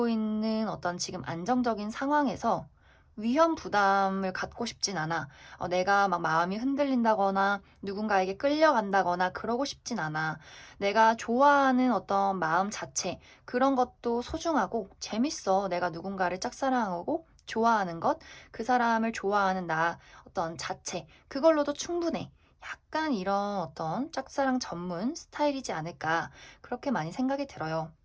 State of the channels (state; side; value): identical; both; correlation 1.00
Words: 있는 어떤 지금 안정적인 상황에서 위험 부담을 갖고 싶진 않아. 내가 막 마음이 흔들린다거나 누군가에게 끌려간다거나 그러고 싶진 않아. 내가 좋아하는 어떤 마음 자체, 그런 것도 소중하고 재밌어. 내가 누군가를 짝사랑하고 좋아하는 것, 그 사람을 좋아하는 나 어떤 자체, 그걸로도 충분해. 약간 이런 어떤 짝사랑 전문 스타일이지 않을까, 그렇게 많이 생각이 들어요.